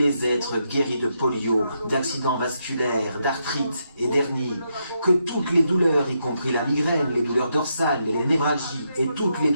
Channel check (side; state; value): both; inverted; correlation -0.81